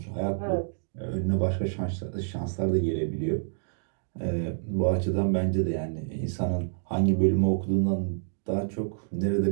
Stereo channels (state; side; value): silent; left; digital silence